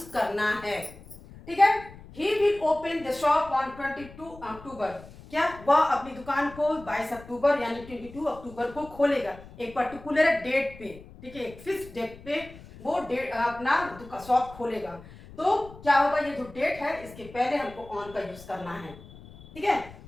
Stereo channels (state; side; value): noise; left; rumble, 19 dB below the sound